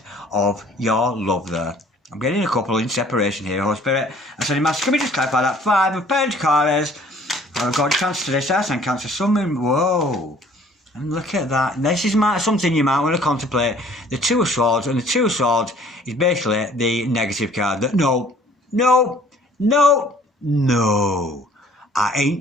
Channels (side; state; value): both; normal; correlation 0.55